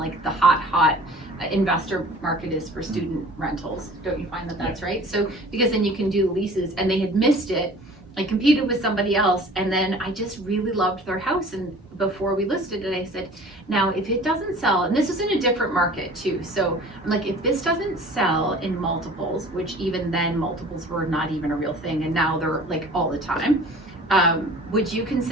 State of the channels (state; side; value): normal; both; correlation 0.45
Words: the hot investor market is for student rentals. Don't you find that that's right? So because then you can do leases, and they had missed it. I competed with somebody else, and then I just really loved their house, and before we listed it, I said, now if it doesn't sell, and this is in a different market too, so I'm like, if this doesn't sell in multiples, which even then multiples were not even a real thing, and now they're like all the time, would you